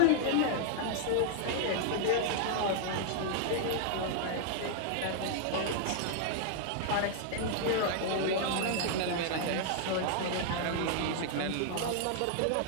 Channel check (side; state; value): both; different; correlation -0.01